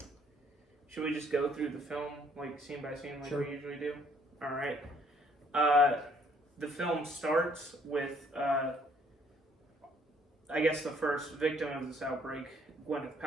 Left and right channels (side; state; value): both; normal; correlation 0.63